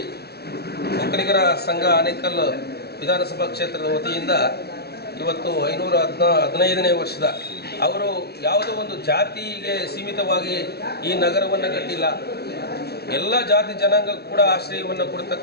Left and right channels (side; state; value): right; late; 0.47 ms